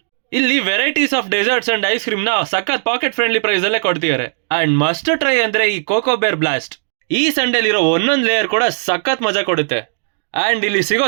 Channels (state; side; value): silent; left; digital silence